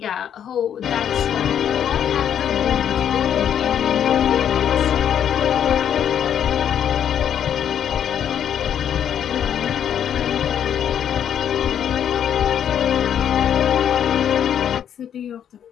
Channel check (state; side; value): quieter; right; 9.2 dB